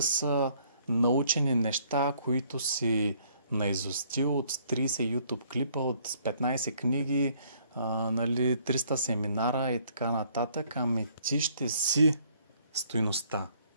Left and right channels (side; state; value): both; inverted; correlation -0.64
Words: са научени неща, които си наизустил от 30 YouTube клипа, от 15 книги, 300 семинара и така нататък, ами ти ще си стойността.